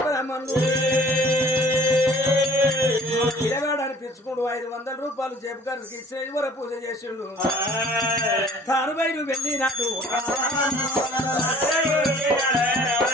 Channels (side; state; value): both; normal; correlation 0.52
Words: బ్రాహ్మణులు పిల్లగాడు అనిపించుకుంటూ 500 రూపాయలు జేబుగారికి ఇచ్చిన ఇవర పూజ చేసిండు తాను బయలు వెళ్ళినాడు